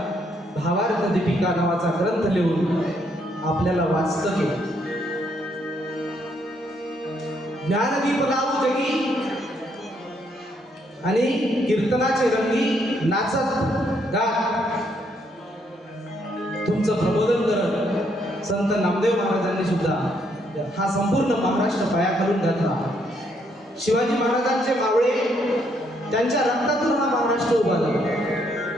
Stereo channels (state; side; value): normal; both; correlation 0.72